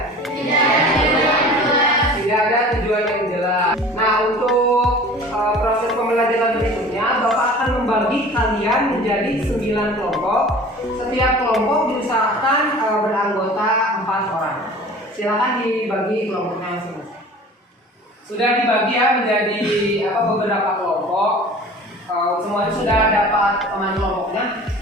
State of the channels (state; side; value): normal; both; correlation 0.43